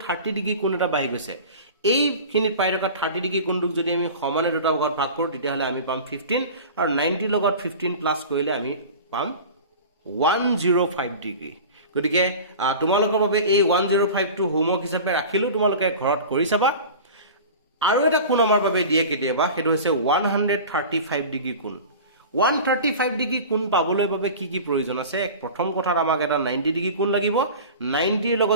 30 ডিগ্ৰী কোণ এটা বাঢ়ি গৈছে এইখিনিত পাই থকা 30 ডিগ্ৰী কোণটোক যদি আমি সমানে দুটা ভাগত ভাগ কৰো তেতিয়াহলে আমি পাম 15 আৰু 90 লগত 15 প্লাস কৰিলে আমি পাম 105 ডিগ্ৰী গতিকে তোমালোকৰ বাবে এই 105 টো হোমৱৰ্ক হিচাপে ৰাখিলো তোমালোকে ঘৰত কৰি চাবা আৰু এটা কোণ আমাৰ বাবে দিয়ে কেতিয়াবা হেতু হৈছে 135 ডিগ্ৰী কোণ 135 ডিগ্ৰী কোণ পাবলৈ বাবে কি কি প্ৰয়োজন আছে প্ৰথম কথাত আমাক এটা 90 ডিগ্ৰী কোণ লাগিব 90 ৰ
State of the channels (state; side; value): inverted; both; correlation -0.36